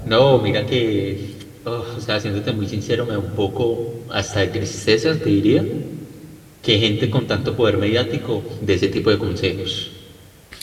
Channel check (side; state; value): both; identical; correlation 1.00